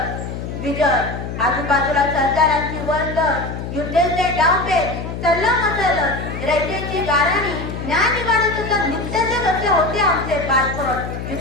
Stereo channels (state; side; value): noise; left; hum, 7 dB below the sound